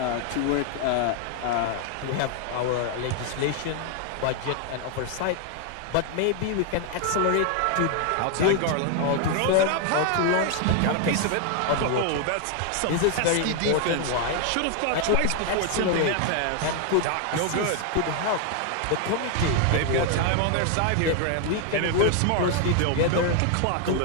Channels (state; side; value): different; both; correlation 0.00